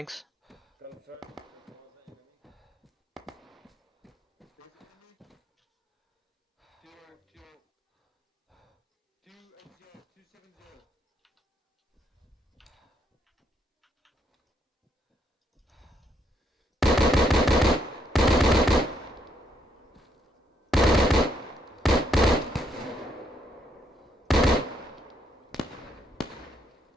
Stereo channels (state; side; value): normal; both; correlation 0.74